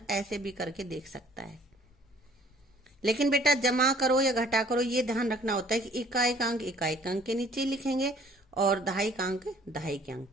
ऐसे भी करके देख सकता है, लेकिन बेटा जमा करो या घटा करो ये ध्यान रखना होता है कि इकाई का अंक इकाई के अंक के नीचे लिखेंगे और दहाई का अंक दहाई के अंक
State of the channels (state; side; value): normal; both; correlation 0.56